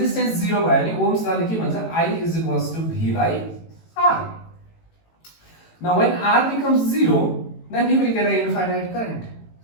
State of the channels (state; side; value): late; right; 18 ms